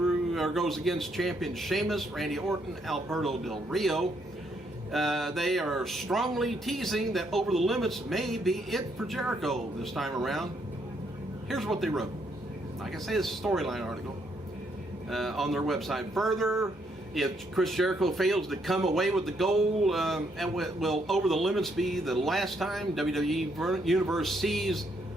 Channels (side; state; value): both; normal; correlation 0.73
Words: against champion Sheamus, Randy Orton, Alberto Del Rio. They are strongly teasing that Over the Limits may be it for Jericho this time around. Here's what they wrote. Like I say, it's a storyline article on their website. Further, if Chris Jericho fails to come away with the gold, will Over the Limits be the last time WWE Universe sees